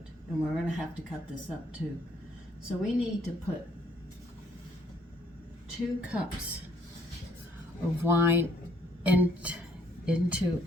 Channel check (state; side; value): normal; both; correlation 0.65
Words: and we're going to have to cut this up too. So we need to put 2 cups of wine into